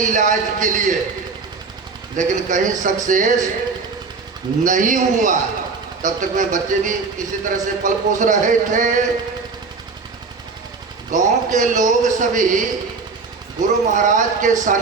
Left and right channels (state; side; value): quieter; left; 4.5 dB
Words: इलाज के लिए, लेकिन कहीं सक्सेस नहीं हुआ। तब तक में बच्चे भी किसी तरह से पल पोस रहे थे। गांव के लोग सभी गुरु महाराज के